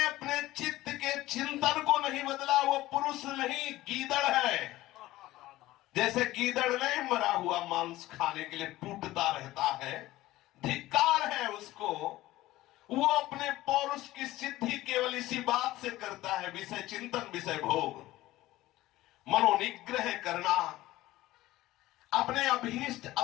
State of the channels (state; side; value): quieter; right; 16.8 dB